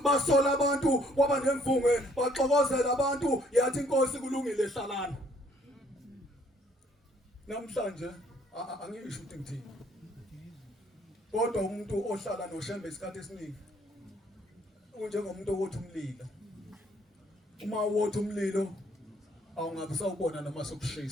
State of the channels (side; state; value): both; normal; correlation 0.64